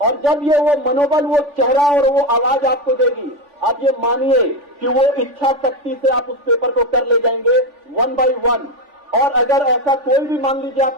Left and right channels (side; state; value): left; late; 3.4 ms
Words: और जब ये वो मनोबल, वो चेहरा और वो आवाज आपको देगी, आप ये मानिए कि वो इच्छा शक्ति से आप उस पेपर को कर ले जाएंगे 1 by 1। और अगर ऐसा कोई भी मान लीजिए